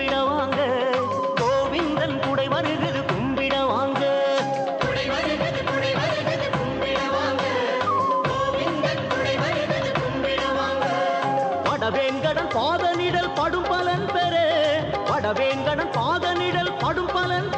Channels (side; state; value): both; identical; correlation 1.00